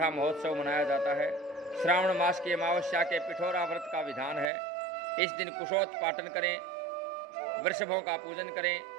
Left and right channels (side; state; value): left; drops out; at 4.5 s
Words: महोत्सव मनाया जाता है। श्रावण मास की अमावस्या के पिठोरा व्रत का विधान है। इस दिन कुशोत्पाटन करें, वृषभों का पूजन करें।